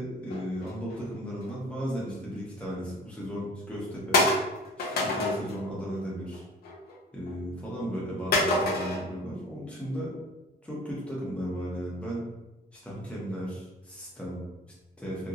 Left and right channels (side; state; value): both; normal; correlation 0.41